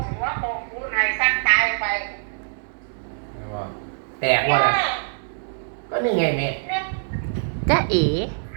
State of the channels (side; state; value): left; silent; digital silence